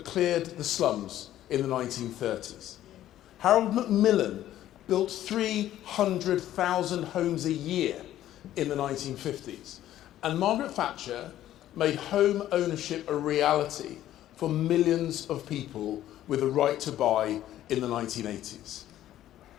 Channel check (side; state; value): right; quieter; 12.8 dB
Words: cleared the slums in the 1930s. Harold Macmillan built 300,000 homes a year in the 1950s. And Margaret Thatcher made home ownership a reality for millions of people with a right to buy in the 1980s.